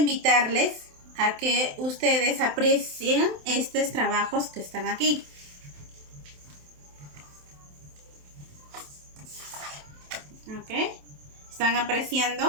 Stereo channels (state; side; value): late; left; 27 ms